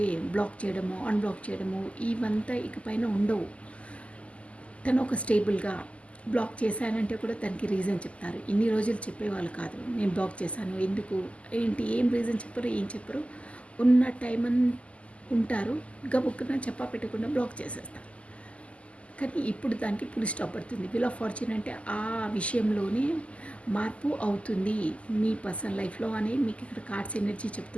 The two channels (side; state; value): right; late; 0.061 ms